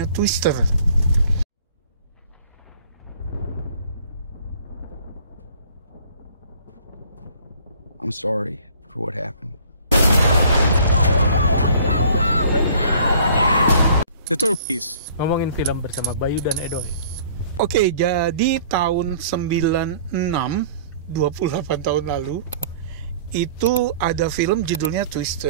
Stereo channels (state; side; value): inverted; both; correlation -0.53